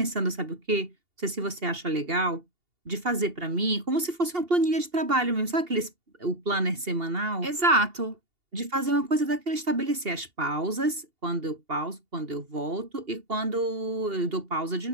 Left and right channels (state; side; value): late; left; 2.8 ms